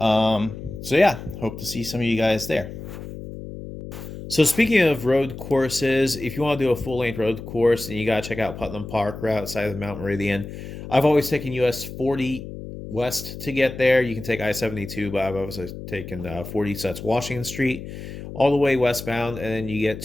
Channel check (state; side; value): noise; left; hum, 11 dB below the sound